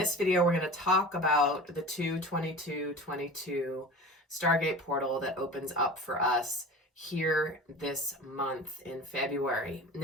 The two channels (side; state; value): both; normal; correlation 0.36